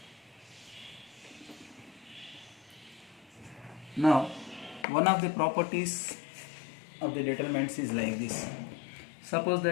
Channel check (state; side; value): drops out; right; at 4.9 s